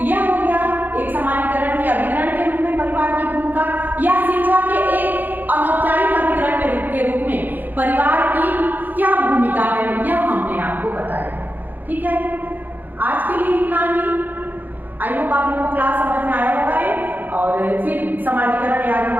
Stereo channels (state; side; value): late; left; 0.086 ms